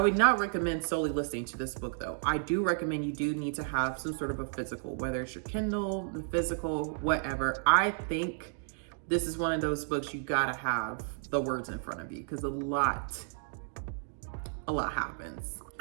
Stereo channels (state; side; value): silent; left; digital silence